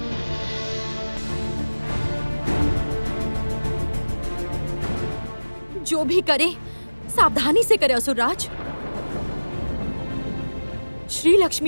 जो भी करे सावधानी से करे असुरराज। श्री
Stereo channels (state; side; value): inverted; both; correlation -1.00